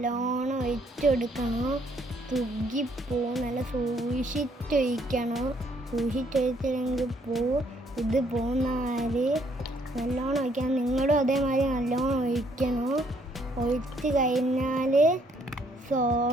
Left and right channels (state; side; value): normal; both; correlation 0.68